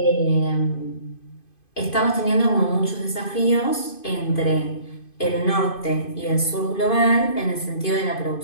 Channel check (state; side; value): late; right; 2.5 ms